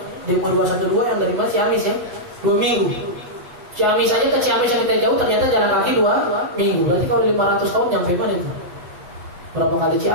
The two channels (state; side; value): late; left; 8.0 ms